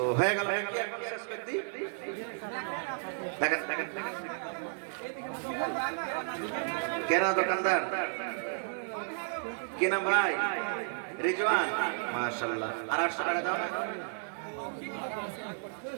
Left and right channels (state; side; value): silent; left; 56 dB below the other